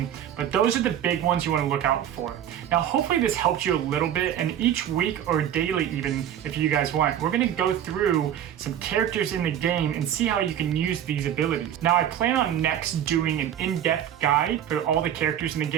But those are the big ones you want to look out for. Now, hopefully this helped you a little bit, and each week or daily even, if you guys want, we're going to go through some characters in the game and see how you can use these abilities. Now, I plan on next doing an in-depth guide for all the characters in the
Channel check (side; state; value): left; quieter; 10.3 dB